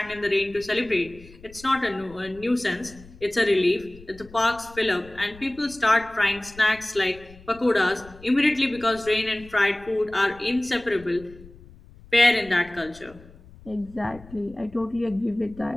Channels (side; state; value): left; noise; rumble, 21 dB below the sound